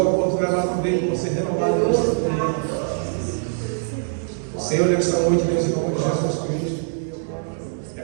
lá também de você renovar a aliança com Ele. Senhor, nesta noite, Deus, em nome de Jesus Cristo. É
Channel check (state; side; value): silent; left; digital silence